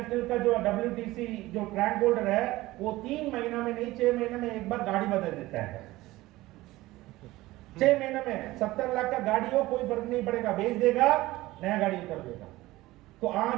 का जो WTC जो ट्रैक होल्डर है, वो 3 महीना में नहीं 6 महीने में एक बार गाड़ी बदल देता है। 6 महीने में 70 लाख का गाड़ी हो, कोई फर्क नहीं पड़ेगा, बेच देगा, नया गाड़ी कर देगा। तो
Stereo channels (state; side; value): quieter; left; 18.3 dB